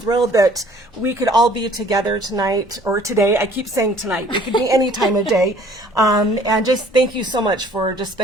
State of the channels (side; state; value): both; normal; correlation 0.55